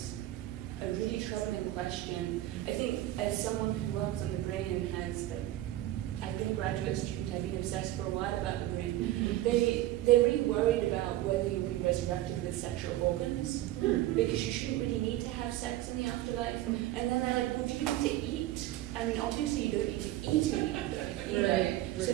a really troubling question. I think as someone who works on the brain and has, like, I've been a graduate student, I've been obsessed for a while about the brain. They're really worried about whether you'll be resurrected with sexual organs, because you shouldn't really need to have sex in the afterlife. And then they're like, well, do you need to eat? I mean, obviously you don't need to eat in the afterlife either. Right. So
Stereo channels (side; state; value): left; quieter; 15.0 dB